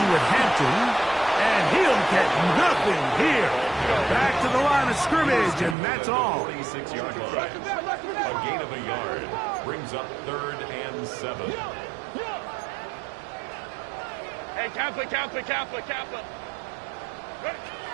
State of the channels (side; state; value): left; drops out; at 5.8 s